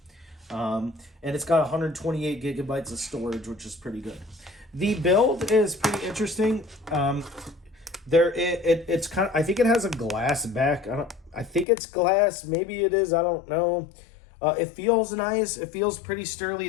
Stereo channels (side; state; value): right; drops out; at 11.7 s